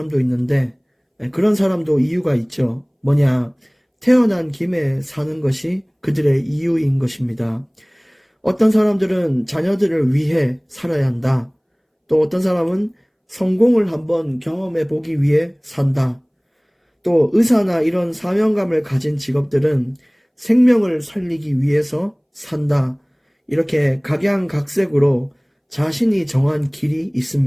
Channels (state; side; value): identical; both; correlation 1.00